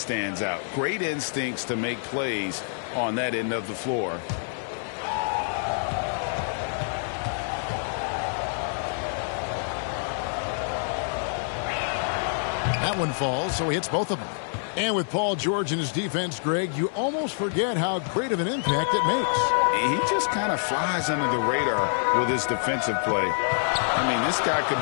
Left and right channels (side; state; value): right; silent; 60 dB below the other